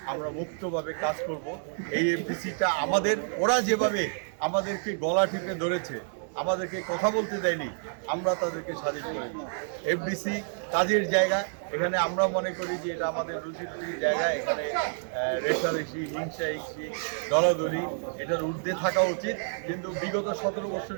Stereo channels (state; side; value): silent; left; digital silence